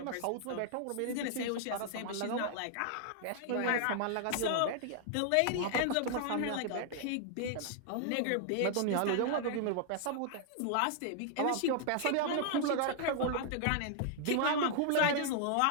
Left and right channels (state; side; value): different; both; correlation 0.00